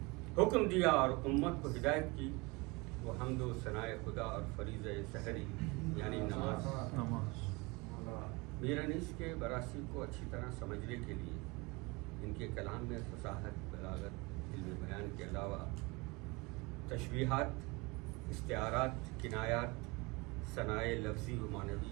حکم دیا اور امت کو ہدایت کی وہ حمد و ثنائے خدا اور فریض سحری یعنی نماز. میر انیس کے براثی کو اچھی طرح سمجھنے کے لیے ان کے کلام میں فصاحت، بلاغت، علم بیان کے علاوہ تشبیہات، استعارات، کنایات، ثنائے لفظی و معنوی،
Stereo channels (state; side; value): quieter; left; 25.9 dB